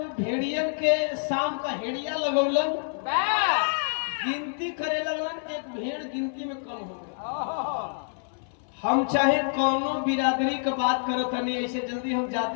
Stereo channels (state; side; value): silent; right; 60 dB below the other